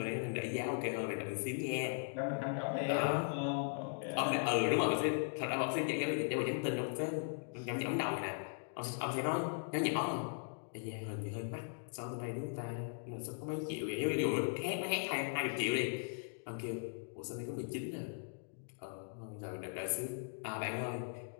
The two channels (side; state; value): right; silent; digital silence